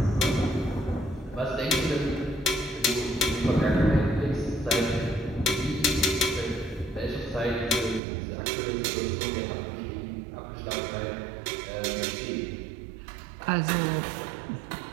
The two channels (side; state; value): left; drops out; at 8.0 s